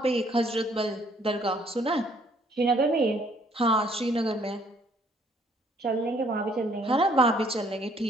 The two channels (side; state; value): both; normal; correlation 0.63